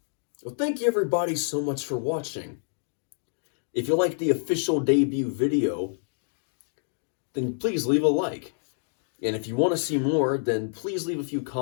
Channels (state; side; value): silent; right; digital silence